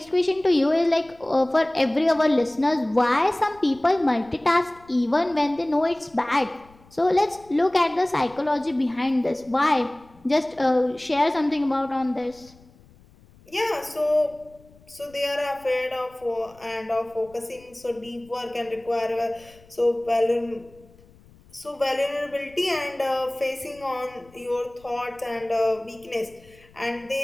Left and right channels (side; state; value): left; noise; rumble, 27 dB below the sound